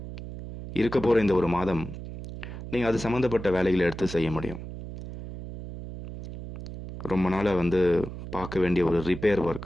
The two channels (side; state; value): right; noise; hum, 10 dB below the sound